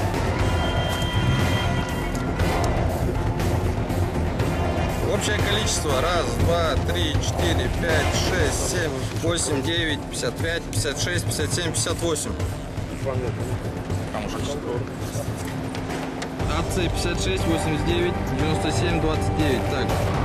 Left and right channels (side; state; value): both; identical; correlation 1.00